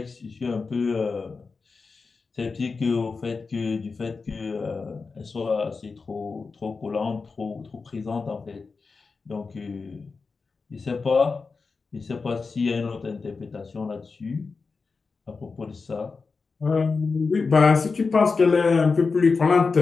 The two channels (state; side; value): quieter; right; 4.5 dB